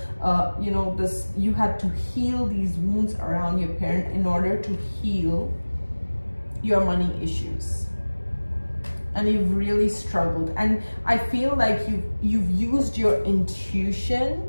you know, this, you had to heal these wounds around your parent in order to heal your money issues. And you've really struggled. And I feel like you've used your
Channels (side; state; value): both; inverted; correlation -1.00